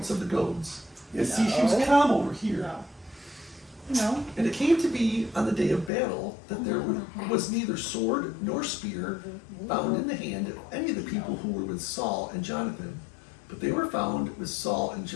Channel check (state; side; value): drops out; right; at 5.9 s